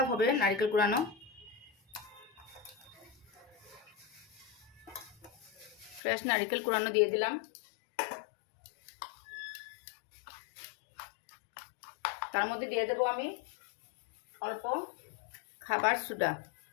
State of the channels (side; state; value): right; drops out; at 6.0 s